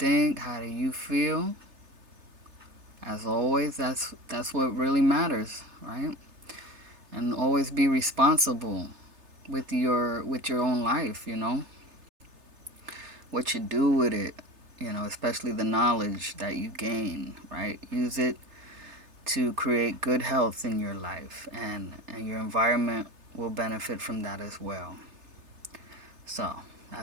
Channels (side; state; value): left; late; 3.3 ms